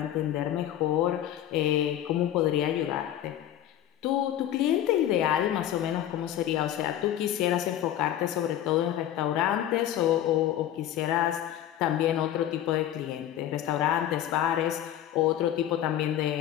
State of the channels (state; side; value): quieter; right; 11.7 dB